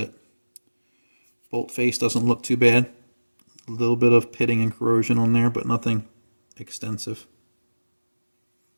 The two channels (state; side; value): inverted; both; correlation -1.00